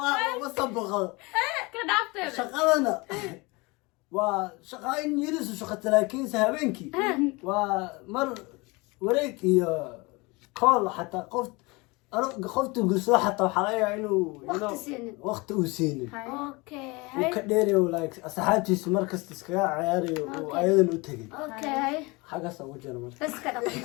ma soo boqdo Ka dhaafteeda. shaqadana waa shaqaayin yirisu shaqata laakiinse habeenkii waa mar wareeg iyo kool xataa qofta gursado xataa waxaa laga yaabaa inuu Waqti siinin. waqti uu siinin أوكي uu ka dheerayo like asxaabtiisu markasta iskaga ciyaarayo uu ayadan u tegay أوكي xaggaas ugu jira marka بس كده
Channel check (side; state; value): right; quieter; 25.5 dB